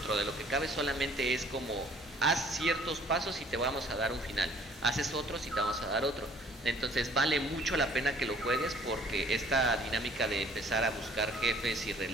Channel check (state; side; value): normal; both; correlation 0.56